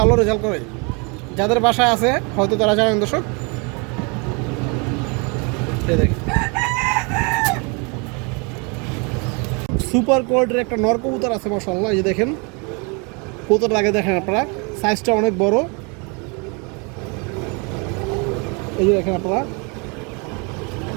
রেজাল্ট করে। যাদের বাসায় আছে হয়তো তারা জানেন দর্শক। এই দেখেন সুপার কোয়ালিটির একটা নর কবুতর আছে মাশাআল্লাহ। এই যে দেখেন কবুতরটা আগে দেখেন আপনারা, সাইজটা অনেক বড়। এই যে দেখেন আপনারা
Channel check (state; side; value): quieter; left; 32.0 dB